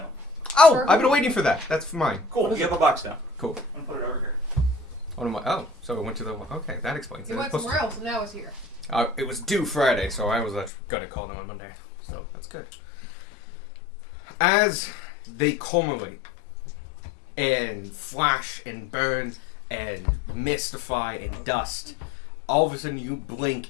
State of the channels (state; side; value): drops out; right; at 10.7 s